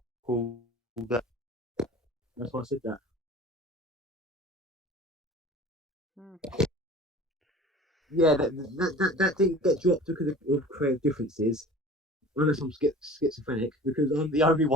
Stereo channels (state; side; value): normal; both; correlation 0.42